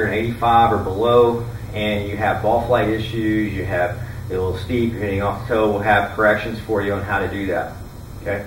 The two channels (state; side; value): identical; both; correlation 1.00